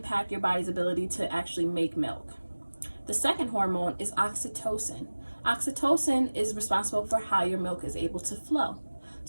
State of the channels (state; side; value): inverted; both; correlation -1.00